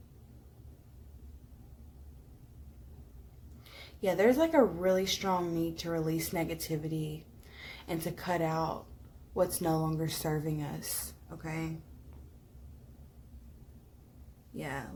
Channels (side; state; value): both; identical; correlation 1.00